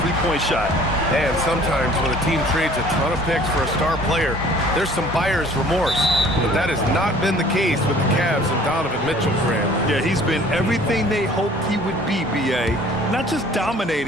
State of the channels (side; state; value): both; normal; correlation 0.52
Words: three-point shot. And sometimes when a team trades a ton of picks for a star player, there's some buyer's remorse. But that has not been the case with the Cavs and Donovan Mitchell, Grant. Yeah, he's been everything they hoped he would be, BA. Not just